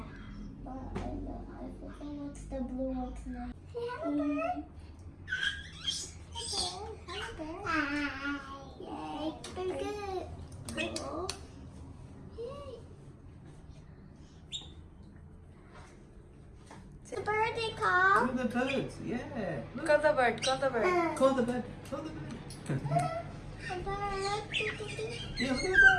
But I forgot what's the blue one's name. Hey, hello, bird. Hello, bird. Hi. Yay. Very good. Cool. Yay. The bird they call. Call the birds, yeah. Look. Call the bird, call the bird. Call the bird, call the bird. The bird. Yeah, look at the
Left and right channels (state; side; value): identical; both; correlation 1.00